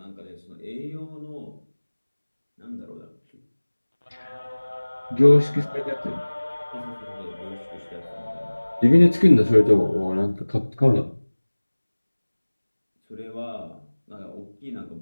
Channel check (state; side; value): inverted; both; correlation -1.00